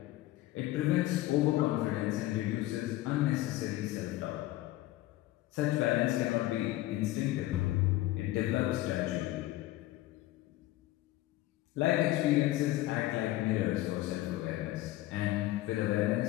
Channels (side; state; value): right; quieter; 16.5 dB